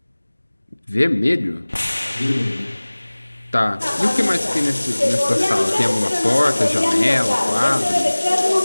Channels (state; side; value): inverted; both; correlation -1.00